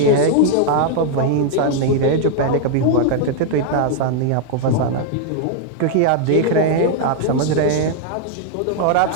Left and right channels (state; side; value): different; both; correlation 0.00